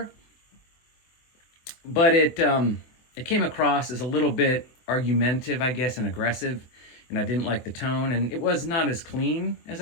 but it came across as a little bit argumentative, I guess, and aggressive. And I didn't like the tone, and it was not as clean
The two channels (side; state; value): right; late; 24 ms